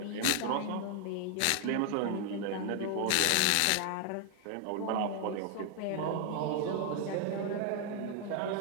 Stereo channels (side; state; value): both; different; correlation 0.00